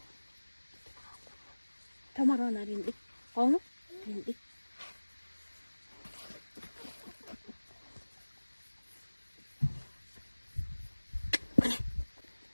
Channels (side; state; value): both; inverted; correlation -1.00